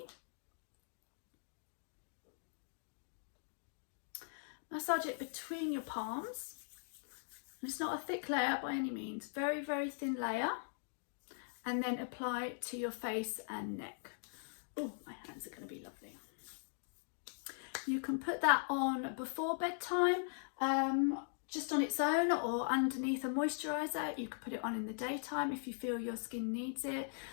Massage it between your palms. And it's not a thick layer by any means, very thin layer. And then apply it to your face and neck. Oh, my hands are going to be lovely. You can put that on before bedtime, just on its own, or underneath a moisturiser. You can put it on in the daytime if you feel your skin needs it,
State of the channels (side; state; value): right; silent; digital silence